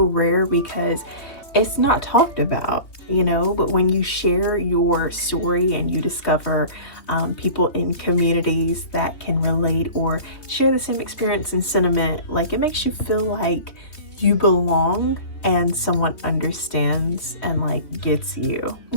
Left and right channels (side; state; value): right; late; 3.2 ms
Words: rare because it's not talked about, but when you share your story and you discover people in communities that can relate or share the same experience and sentiment, like it makes you feel like you belong and someone understands and like gets you.